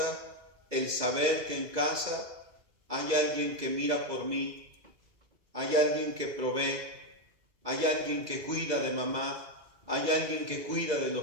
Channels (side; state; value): left; late; 2.0 ms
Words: el saber que en casa hay alguien que mira por mí, hay alguien que provee, hay alguien que cuida de mamá, hay alguien que cuida de